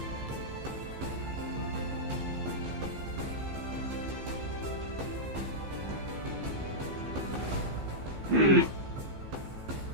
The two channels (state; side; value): late; left; 15 ms